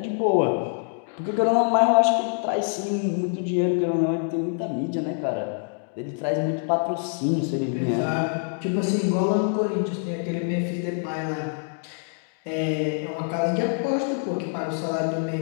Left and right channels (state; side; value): silent; right; 62 dB below the other